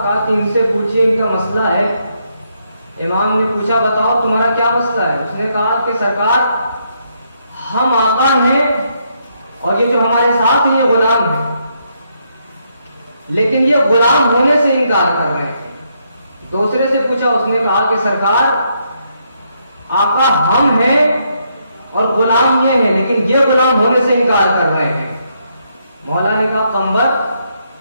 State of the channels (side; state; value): both; inverted; correlation -0.76